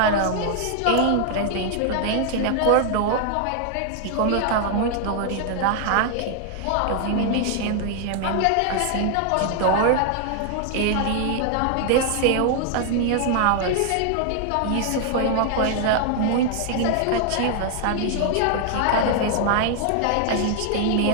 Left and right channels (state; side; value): different; both; correlation 0.00